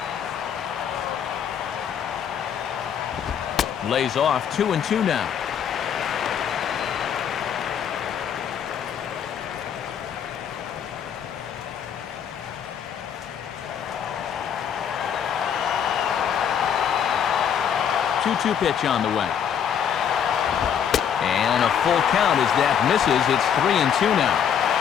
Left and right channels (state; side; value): quieter; right; 8.3 dB